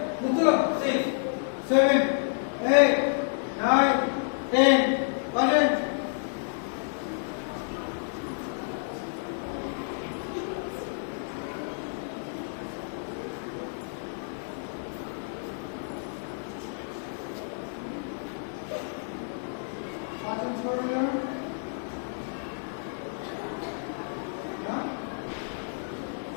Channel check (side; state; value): right; silent; digital silence